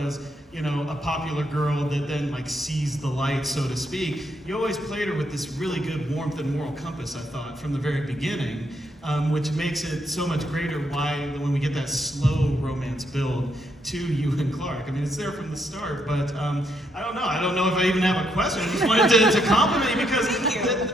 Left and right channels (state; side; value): normal; both; correlation 0.76